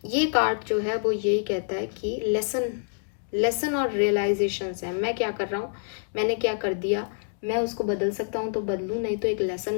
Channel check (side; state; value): right; silent; digital silence